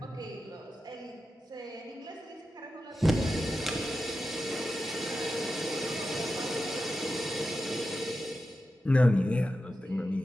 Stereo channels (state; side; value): normal; both; correlation 0.91